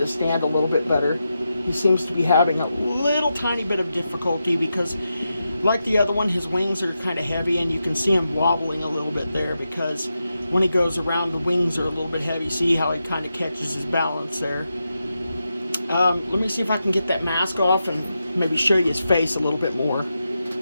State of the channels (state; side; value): inverted; both; correlation -0.88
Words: stand a little bit better. He seems to be having a little tiny bit of difficulty because, like the other one, his wings are kind of heavy, and you can see him wobbling a little bit there because when he goes around, the wings are a little bit heavy. See how he kind of catches his balance there. Let me see if I can get that mask off and maybe show you his face a little bit more.